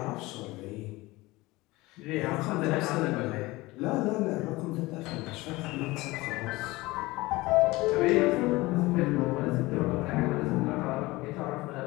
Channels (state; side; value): quieter; right; 20.7 dB